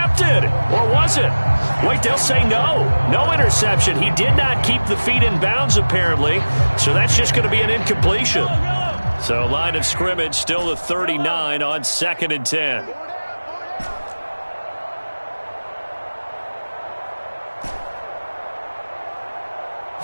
Or was it? Wait, they'll say no. No interception. He did not keep the feet in bounds, apparently. So that's just going to be an incompletion. So line of scrimmage still the 39 on 2nd and 10.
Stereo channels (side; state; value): both; inverted; correlation -1.00